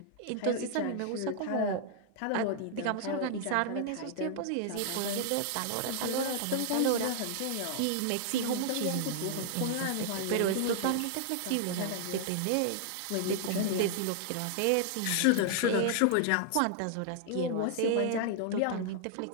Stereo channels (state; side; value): different; both; correlation -0.01